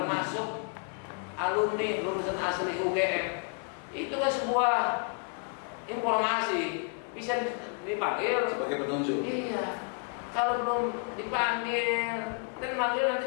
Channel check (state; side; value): quieter; right; 37.9 dB